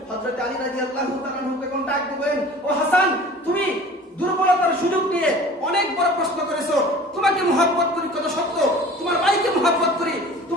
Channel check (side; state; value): both; normal; correlation 0.43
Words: হযরত আলী রাদিয়াল্লাহু তাআলা আনহু তখন ডাক দিবেন, ও হাসান, তুমি দুর্বলতার সুযোগ নিয়ে অনেক বড় প্রশ্ন করেছো। তোমাকে মহব্বত করি কত সত্য, তোমার ভাইকে মহব্বত করি,